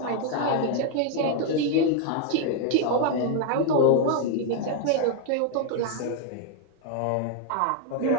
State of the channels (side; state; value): both; different; correlation 0.00